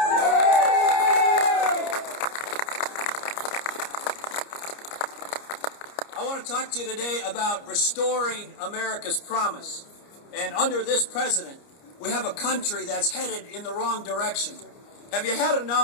I want to talk to you today about restoring America's promise. And under this president, we have a country that's headed in the wrong direction. Have you had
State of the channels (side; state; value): right; late; 29 ms